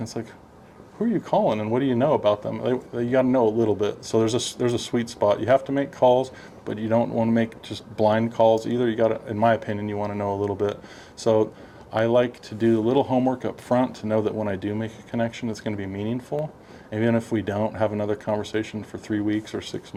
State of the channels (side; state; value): both; identical; correlation 1.00